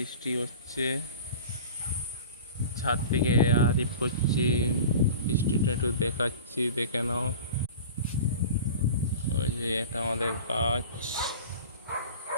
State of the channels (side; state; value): both; inverted; correlation -0.38